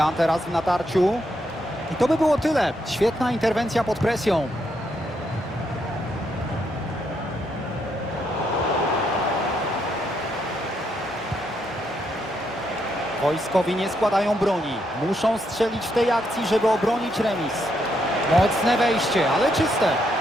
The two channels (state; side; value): normal; both; correlation 0.77